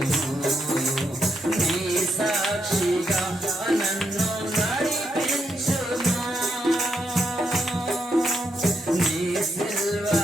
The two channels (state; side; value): normal; both; correlation 0.80